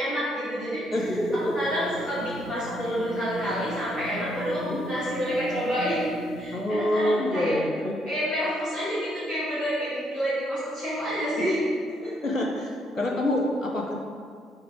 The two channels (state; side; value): normal; both; correlation 0.73